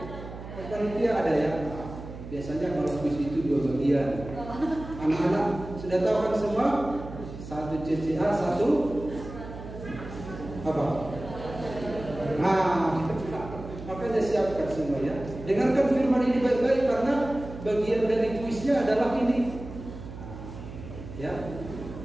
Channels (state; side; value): noise; right; hum, 12 dB below the sound